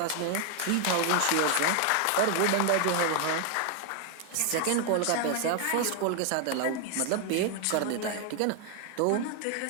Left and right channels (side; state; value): both; different; correlation 0.00